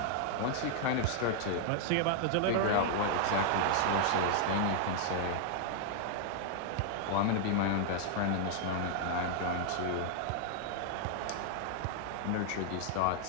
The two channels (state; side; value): different; both; correlation -0.01